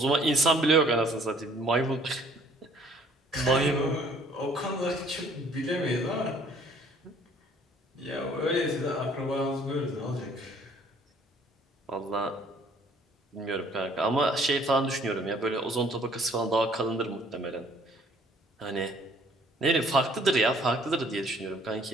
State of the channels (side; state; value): both; normal; correlation 0.59